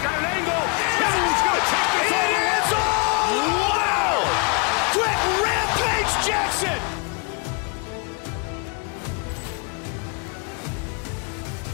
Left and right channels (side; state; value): right; quieter; 33.9 dB